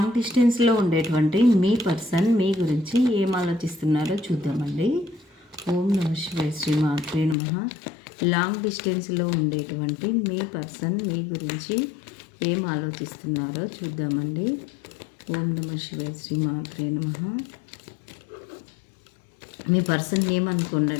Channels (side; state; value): right; drops out; at 7.4 s